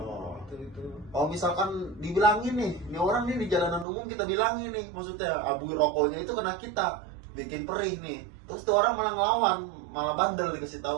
Itu. Oh, misalkan dibilangin nih, ini orang nih di jalanan umum kita bilangin nih, maksudnya abu rokoknya itu kena kita, bikin perih nih. Terus tuh orang malah ngelawan, malah bandel dikasih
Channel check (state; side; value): drops out; left; at 3.9 s